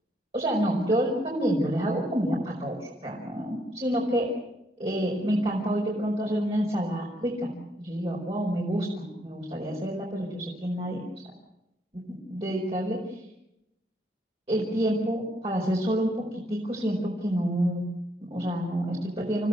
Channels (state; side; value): normal; both; correlation 0.72